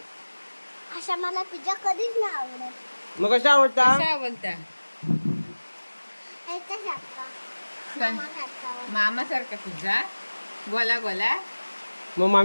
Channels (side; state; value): both; inverted; correlation -1.00